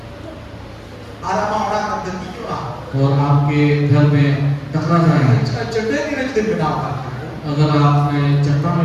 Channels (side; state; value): both; identical; correlation 1.00